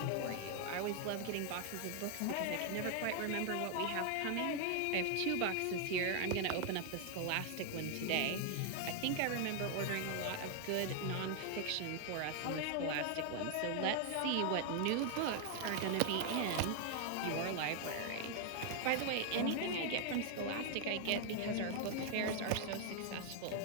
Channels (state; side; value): different; both; correlation 0.00